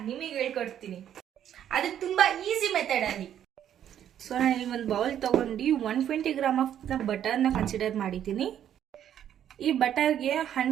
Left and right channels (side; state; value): left; quieter; 10.2 dB